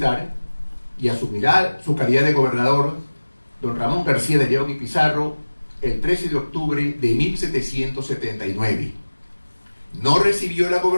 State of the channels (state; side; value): inverted; both; correlation -1.00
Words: y asumirá su calidad de gobernador don Ramón García de León y Pizarro el 13 de octubre de 1779. No recibió la